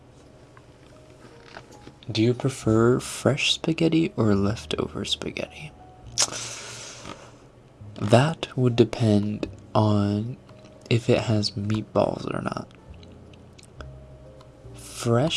Do you prefer fresh spaghetti or leftover spaghetti? That would depend on if it has meatballs or not.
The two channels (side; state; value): both; identical; correlation 1.00